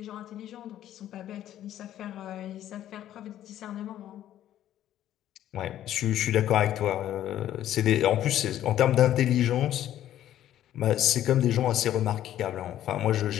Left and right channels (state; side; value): quieter; right; 12.1 dB